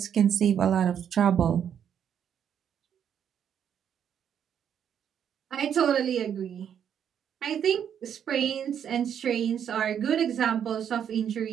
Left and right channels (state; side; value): quieter; left; 8.7 dB